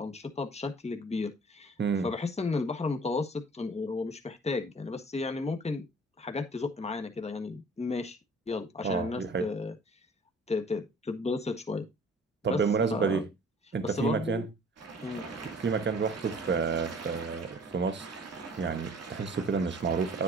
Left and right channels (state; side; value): normal; both; correlation 0.50